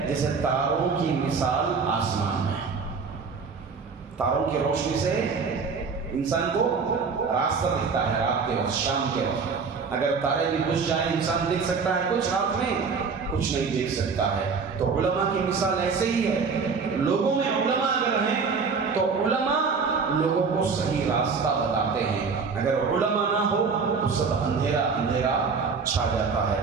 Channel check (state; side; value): quieter; left; 5.2 dB